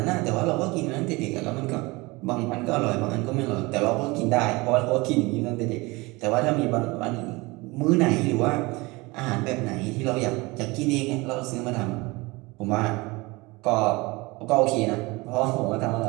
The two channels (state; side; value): quieter; left; 23.7 dB